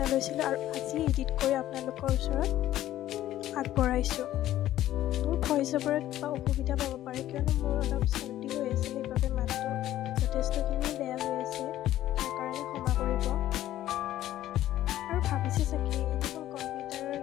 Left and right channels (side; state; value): right; quieter; 13.4 dB